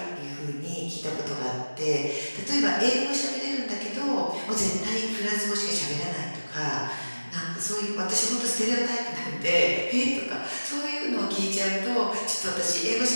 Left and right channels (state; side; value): inverted; both; correlation -1.00